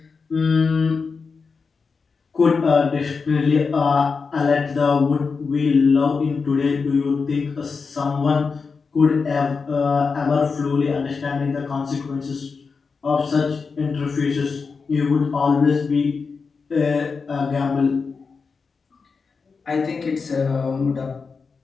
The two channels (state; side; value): quieter; right; 4.9 dB